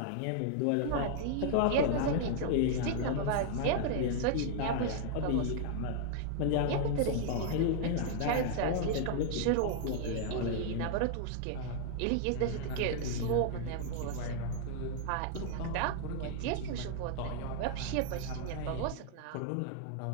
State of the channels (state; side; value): different; both; correlation -0.01